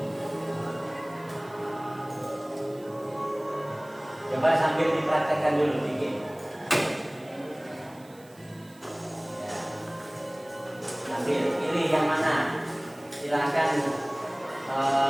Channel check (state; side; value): noise; right; hiss, 26 dB below the sound